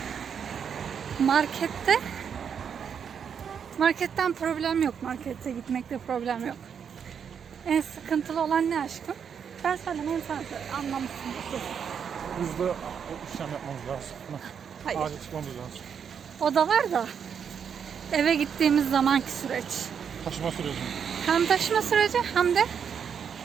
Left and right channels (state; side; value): quieter; left; 7.3 dB